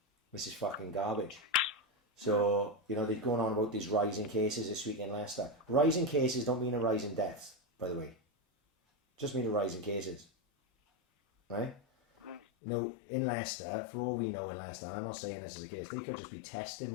This is fucking garbage. So, you know, they're going on about these rising cases this week in Leicester. Rising cases don't mean a rise in deaths, by the way. Just mean a rise in cases. Right? You know, in Leicester, for all we know in Leicester, and I'm not saying this is a case, they could just be testing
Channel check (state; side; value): drops out; right; at 12.4 s